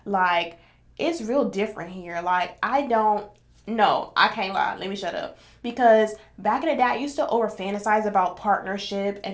like, it's real different here. Like, I don't no, I can't lie. Let me shut up. Because back in the day, I used to over fantasize about partnership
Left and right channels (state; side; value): identical; both; correlation 1.00